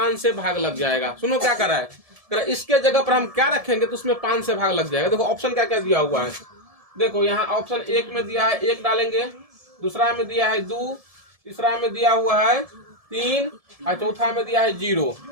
से भाग लग जाएगा। सुनो क्या कर रहा है, इसके जगह पर हम क्या रखेंगे तो उसमें 5 से भाग लग जाएगा। देखो ऑप्शन क्या क्या दिया हुआ है। देखो यहाँ ऑप्शन 1 में दिया है 1 डालेंगे, दूसरा में दिया है 2, तीसरा में दिया हुआ है 3 और चौथा में दिया है 0।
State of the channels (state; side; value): late; left; 1.7 ms